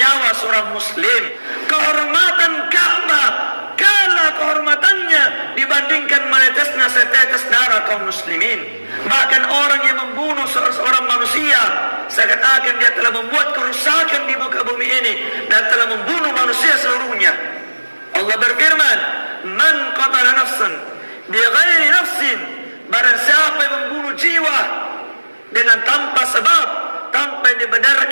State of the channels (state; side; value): inverted; both; correlation -1.00